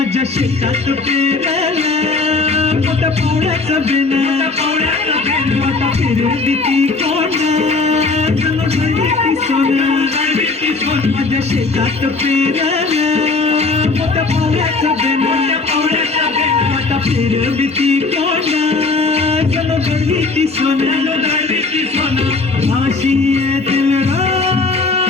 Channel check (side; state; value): right; quieter; 3.9 dB